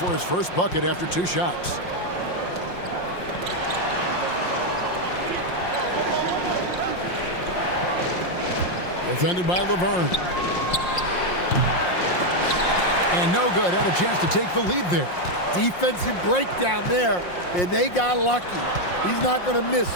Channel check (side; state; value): right; late; 5.6 ms